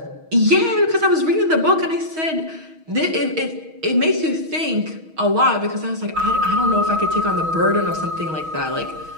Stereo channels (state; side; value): late; left; 6.3 ms